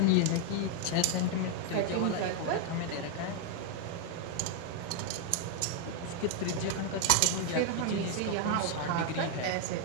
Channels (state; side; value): different; both; correlation 0.00